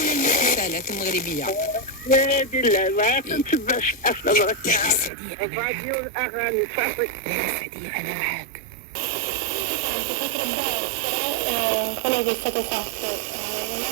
ولا المسلسلات المغربية. نادي لا ما كنتبعش الافلام لا السعدية أنا معاك. الراديو الاغاني صافي. لا السعدية أنا معاك. quello che è stato fatto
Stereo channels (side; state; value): left; drops out; at 5.1 s